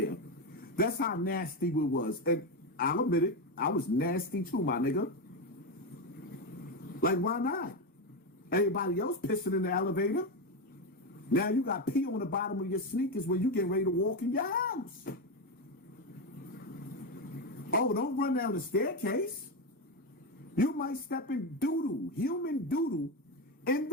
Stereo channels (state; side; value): normal; both; correlation 0.12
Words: That's how nasty we was. And I'll admit it, I was nasty too, my nigga. Like, why not? Everybody else pissing in the elevator. Now you got pee on the bottom of your sneakers when you get ready to walk in your house. Oh, don't run down the staircase. You might step in doodoo, human doodoo, in